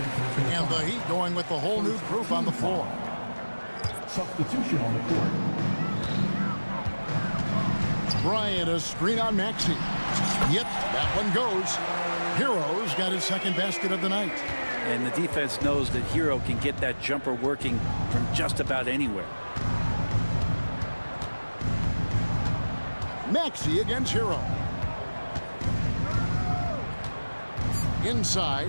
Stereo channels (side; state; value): both; inverted; correlation -1.00